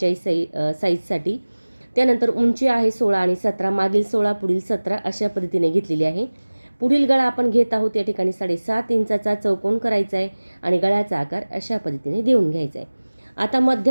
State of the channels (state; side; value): inverted; both; correlation -1.00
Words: साईजसाठी. त्यानंतर उंची आहे 16 आणि 17, मागील 16 पुढील 17 अशा पद्धतीने घेतलेली आहे. पुढील गळा आपण घेत आहोत या ठिकाणी 7.5 इंचाचा चौकोन करायचा आहे आणि गळ्याचा आकार अशा पद्धतीने देऊन घ्यायचा आहे. आता